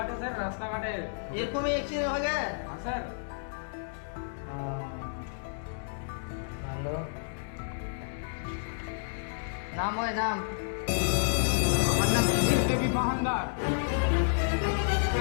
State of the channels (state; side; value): silent; right; digital silence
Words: স্যার, রাস্তাঘাটে। এরকমই অ্যাক্সিডেন্ট হয়ে গেছে? হ্যাঁ স্যার। ভালো। নাম হয় নাম? আমার নাম দেবী মহানদার।